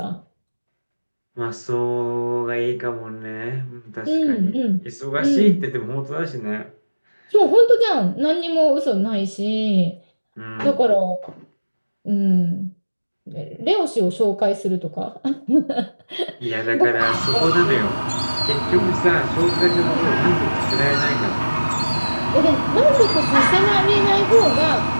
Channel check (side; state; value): both; inverted; correlation -1.00